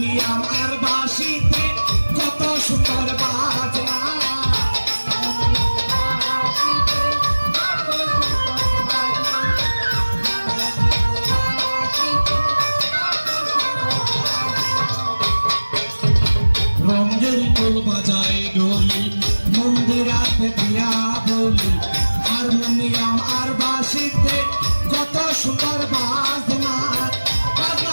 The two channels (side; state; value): both; inverted; correlation -1.00